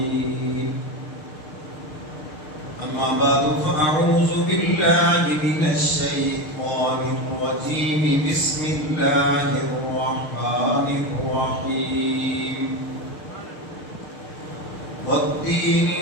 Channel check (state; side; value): late; right; 6.5 ms